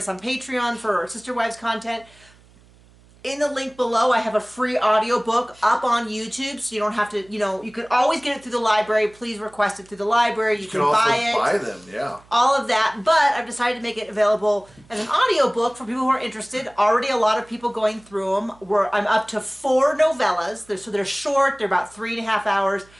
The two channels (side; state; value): right; noise; hum, 28 dB below the sound